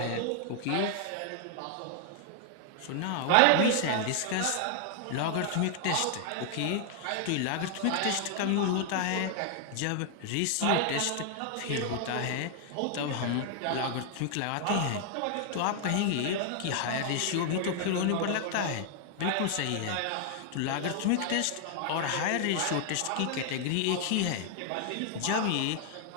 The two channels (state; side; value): different; both; correlation 0.00